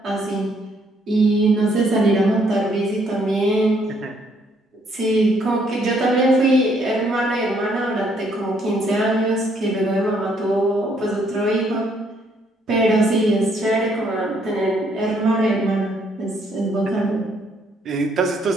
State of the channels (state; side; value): normal; both; correlation 0.69